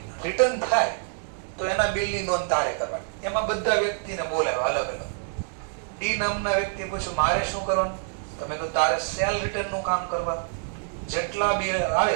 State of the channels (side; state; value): left; silent; 61 dB below the other